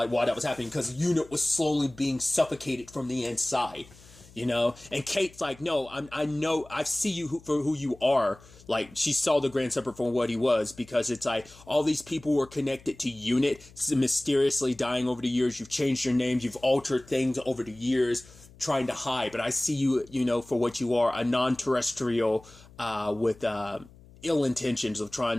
why that was happening, because UNIT was slowly being suffocated from the inside, you know? And Kate's like, no, I know, I see you for who you are. Like, she saw the Grand Serpent for what he was, because it's like, all these people were connected to UNIT, mysteriously dying over the years. You've changed your names, you've altered things over the years, trying to hide, but I see you, you know, for what you are, a non-terrestrial with ill intentions of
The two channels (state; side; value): noise; left; hum, 23 dB below the sound